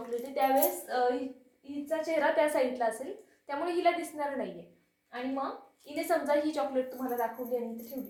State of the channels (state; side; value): identical; both; correlation 1.00